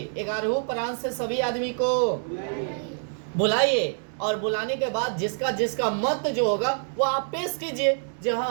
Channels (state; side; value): silent; left; digital silence